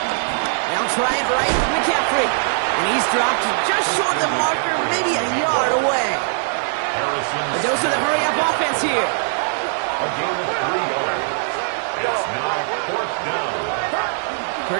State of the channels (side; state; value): left; silent; digital silence